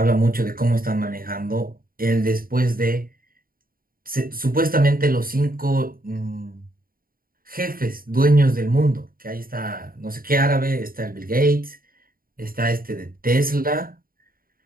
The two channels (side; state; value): left; late; 0.42 ms